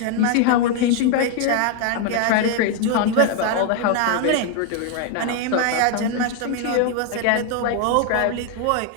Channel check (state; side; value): different; both; correlation 0.01